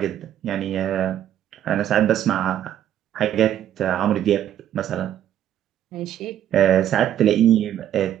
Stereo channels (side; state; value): left; quieter; 11.0 dB